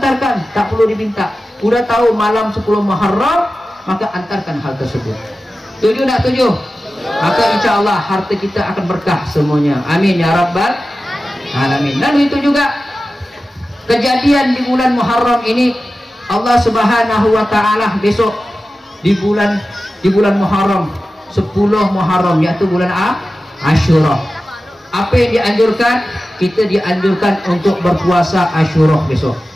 tak perlu diminta. Udah tahu malam 10 Muharram, maka antarkan hal tersebut. Setuju tak? Setuju? Maka insya Allah harta kita akan berkah semuanya. Amin ya rabbal alamin. Dan itu juga kejadian di bulan Muharram ini, Allah Subhanahu wa taala besok di bulan Muharram 10 Muharram, yaitu bulan Asyura. Apa yang dianjurkan? Kita dianjurkan untuk berpuasa Asyura besok.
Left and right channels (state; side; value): normal; both; correlation 0.94